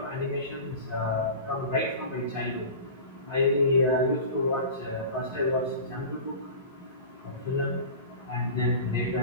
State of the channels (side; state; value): both; inverted; correlation -0.34